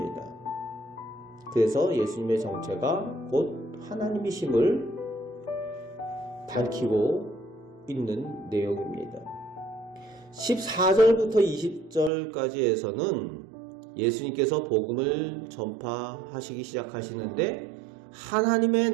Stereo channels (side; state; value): left; drops out; at 12.1 s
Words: 그래서 예수님의 정체가 곧 하나님이심을 밝히고 있는 내용입니다. 14절부터 20절까지에서는 예수님께서 복음을 전파하시기 시작하시는데 하나님의